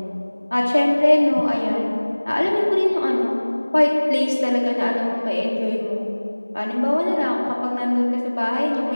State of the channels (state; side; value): inverted; both; correlation -1.00